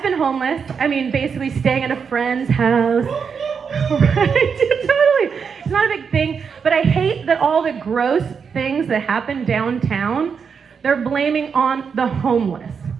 been homeless. I mean, basically staying at a friend's house. Right? Totally. It's not a big thing, but I hate that all the gross things that happen downtown, they're blaming on the homeless.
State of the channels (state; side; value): quieter; left; 6.2 dB